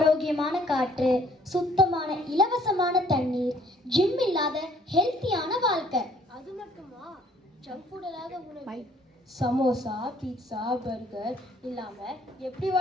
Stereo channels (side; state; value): both; normal; correlation 0.61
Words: காற்று, சுத்தமான இலவசமான தண்ணீர், ஜிம் இல்லாத ஹெல்த்தியான வாழ்க்கை. அது மட்டுமா? ஜங்க் ஃபுட் இல்லாத உணவு, சமோசா, பீட்சா, பர்கர் இல்லாம எப்படி